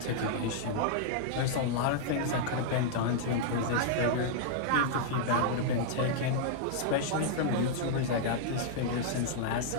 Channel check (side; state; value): both; different; correlation -0.01